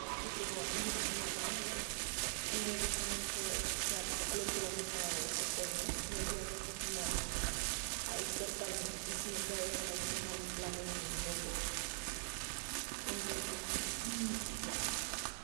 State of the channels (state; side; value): silent; left; digital silence